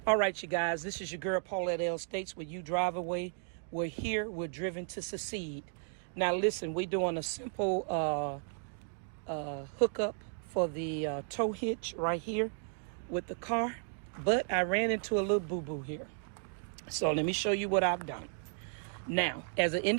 All right, you guys. This is your girl Paulette L. States with you Driveaway. We're here. We're driven to succeed. Now, listen, we're doing a simple hookup for the tow hitch right here with the car, but I ran into a little boo-boo here. So let me show you what I've done. Now, as an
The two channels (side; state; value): left; silent; 55 dB below the other